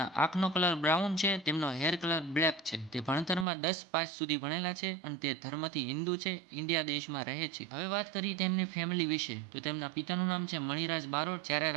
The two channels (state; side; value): drops out; left; at 3.5 s